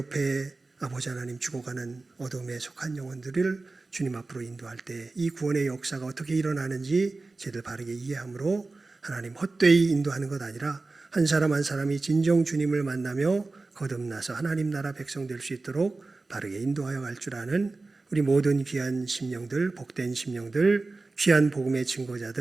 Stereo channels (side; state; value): left; quieter; 3.5 dB